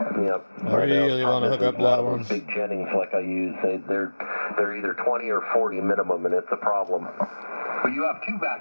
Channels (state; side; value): inverted; both; correlation -1.00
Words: Yep. I really want to hook up that one. Big Jennings like I use, they're either 20 or 40 minimum, and it's a problem. Well, you have two